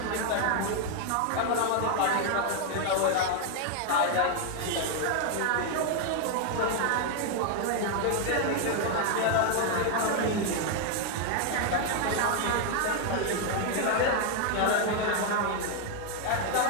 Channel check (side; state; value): both; different; correlation 0.00